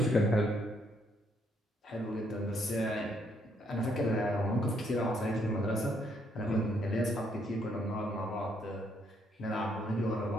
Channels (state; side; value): normal; both; correlation 0.71